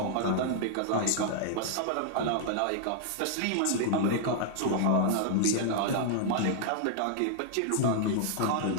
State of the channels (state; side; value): different; both; correlation -0.01